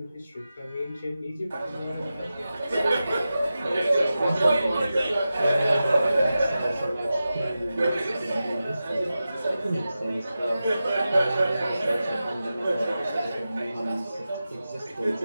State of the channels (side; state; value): both; inverted; correlation -0.93